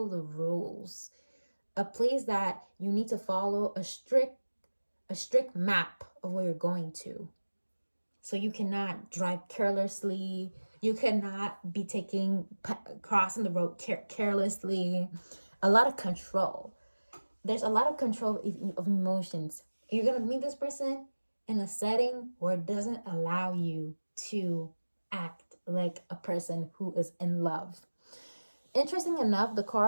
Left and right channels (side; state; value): both; inverted; correlation -1.00